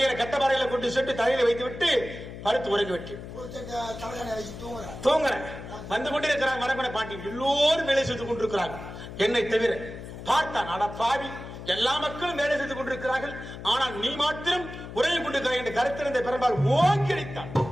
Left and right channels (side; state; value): left; noise; hum, 11 dB below the sound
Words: கட்டபாறையில கொண்டு சென்று தலையில வைத்து விட்டு படுத்து உறங்கி விட்டேன். தூங்குறேன். வந்து கொண்டிருக்கிறாங்க வரகுண பாண்டியன், எல்லோரும் வேலை செய்து கொண்டிருக்கிறாங்க, என்னை தவிர. பார்த்தான், அட பாவி, எல்லா மக்களும் வேலை செய்து கொண்டிருக்கிறார்கள், ஆனால் நீ மாத்திரம் உறங்கி கொண்டிருக்கிறாய் என்று கருத்திருந்த பெரும்பால் ஓங்கி அடித்தான்.